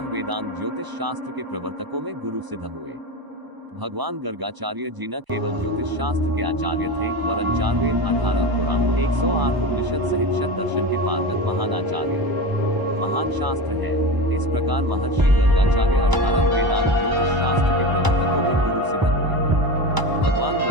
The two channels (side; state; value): left; late; 1.0 ms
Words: वेदांत ज्योतिष शास्त्र के प्रवर्तकों में गुरु सिद्ध हुए। भगवान गर्गाचार्य जी न केवल ज्योतिष शास्त्र के आचार्य थे वरन 4 वेद 18 पुराण 108 उपनिषद सहित शत दर्शन के पारंगत महान आचार्य महान शास्त्र है। इस प्रकार महर्षि गर्गाचार्य 18 वेदांत ज्योतिष शास्त्र के प्रवर्तकों में गुरु सिद्ध हुए। भगवान